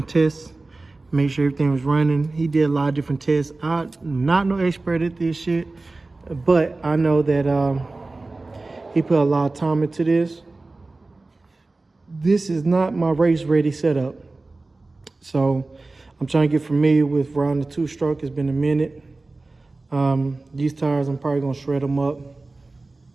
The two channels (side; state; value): left; quieter; 3.3 dB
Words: tests, make sure everything was running. He did a lot of different tests. I'm not no expert at this shit, but I know that he put a lot of time into this. This is not my race ready setup. So I'm trying to get familiar with riding the two-stroke. It's been a minute. These tires, I'm probably gonna shred them up.